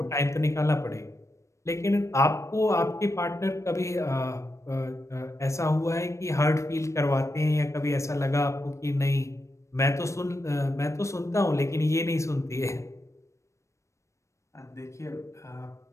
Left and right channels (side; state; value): right; late; 0.14 ms